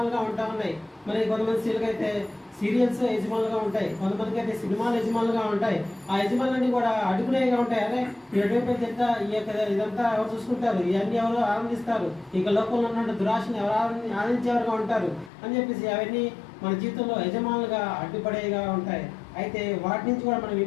ఉంటా ఉన్నాయి. మరి కొంతమంది స్త్రీలకు అయితే సీరియల్స్ యజమానులుగా ఉంటాయి, కొంతమందికి అయితే సినిమాలు యజమానులుగా ఉంటాయి. ఆ యజమానులన్నీ కూడా అడుగునేగా ఉంటాయి. అరే ఎటువంటి తింటా ఈ యొక్క ఇదంతా ఎవరు చూసుకుంటారు, ఇవన్నీ ఎవరు ఆనందిస్తారు, ఇక లోకంలో ఉన్న దురాశని ఎవరు ఆనందించేవారుగా ఉంటారు అని చెప్పేసి అవన్నీ మన జీవితంలో యజమానులుగా అడ్డుపడేగా ఉంటాయి. అయితే వాటి నుంచి కూడా మనం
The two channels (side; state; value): right; drops out; at 15.3 s